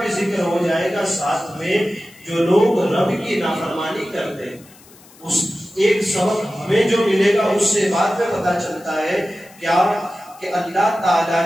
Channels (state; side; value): noise; left; hiss, 25 dB below the sound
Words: ذکر ہو جائے گا ساتھ میں جو لوگ رب کی نافرمانی کرتے ہیں۔ اس ایک سبق ہمیں جو ملے گا اس سے بعد میں پتا چلتا ہے کیا کہ اللہ تعالیٰ